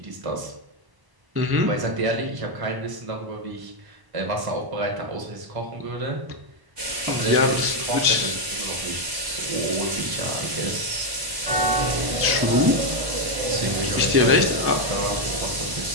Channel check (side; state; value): left; late; 1.0 ms